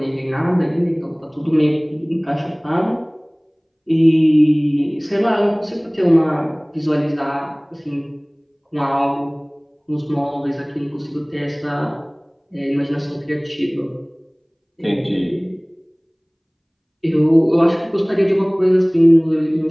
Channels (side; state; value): both; identical; correlation 1.00